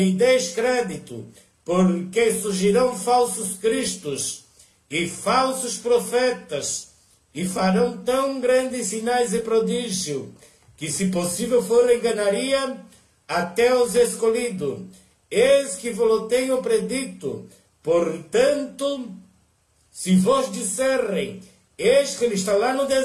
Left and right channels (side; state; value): both; identical; correlation 1.00